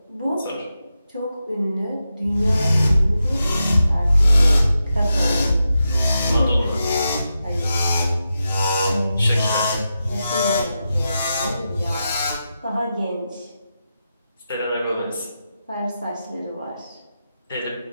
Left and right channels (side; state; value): both; inverted; correlation -0.89